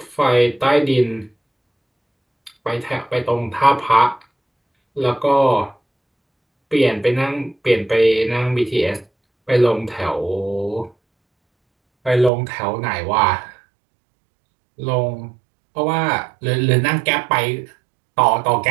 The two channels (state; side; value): drops out; left; at 12.3 s